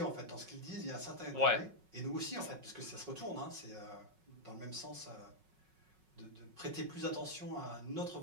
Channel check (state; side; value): late; left; 5.4 ms